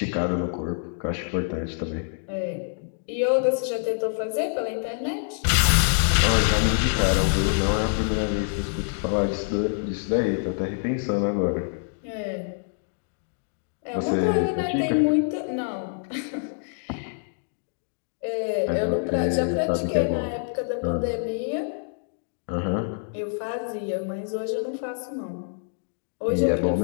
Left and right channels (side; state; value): right; silent; digital silence